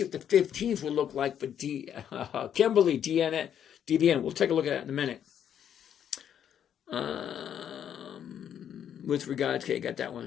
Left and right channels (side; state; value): right; quieter; 9.3 dB